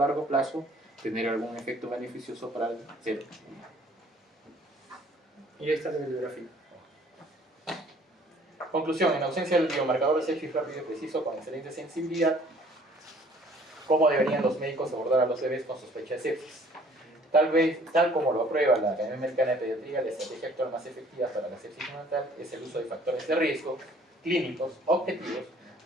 plazo tener algún efecto beneficioso para el ser humano. Y ahí está la bibliografía. Conclusión, en ausencia del biomarcador de sepsis rápido y preciso con excelente sensibilidad, ¿cómo deberían los médicos abordar a los bebés con sospecha de sepsis? Tal como lo aprueba la Academia Americana de Pediatría, la estrategia actual más efectiva para la sepsis neonatal es el uso de factores de riesgo clínicos objetivos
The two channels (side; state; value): both; normal; correlation 0.56